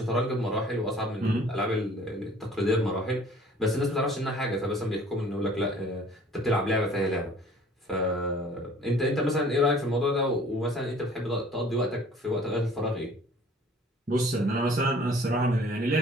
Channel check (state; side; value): normal; both; correlation 0.51